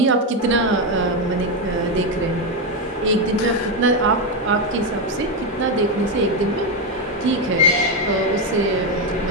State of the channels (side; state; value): both; normal; correlation 0.07